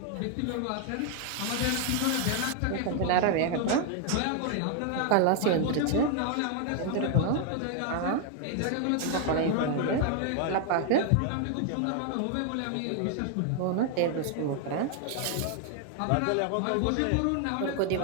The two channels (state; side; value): different; both; correlation 0.00